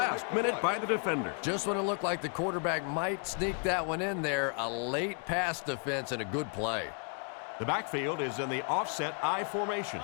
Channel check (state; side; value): quieter; right; 39.7 dB